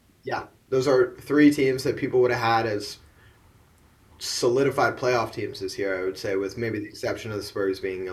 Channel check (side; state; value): both; identical; correlation 1.00